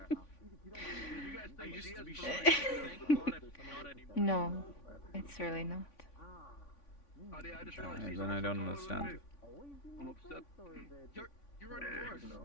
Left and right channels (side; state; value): right; late; 3.5 ms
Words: I used to be sure, thank God I'm not anymore. No, it's really not. Then I don't understand. I'm upset. You're on yours.